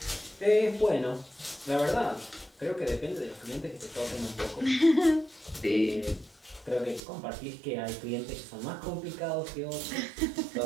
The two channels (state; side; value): drops out; left; at 7.0 s